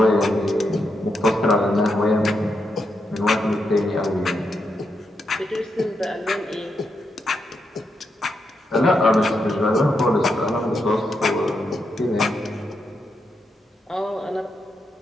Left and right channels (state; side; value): normal; both; correlation 0.83